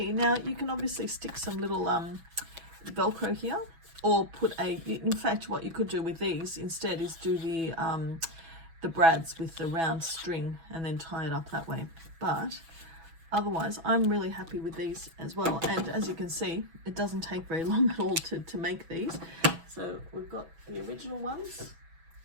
now you can obviously stick some little Velcro here, or put in fact what you could do with these instead is do the brads with the round string and then tie it up that way. But otherwise, I'm really happy with these as well. And as you can see, it doesn't take very long at all to make these. So we've got the original ones.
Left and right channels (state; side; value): late; left; 6.1 ms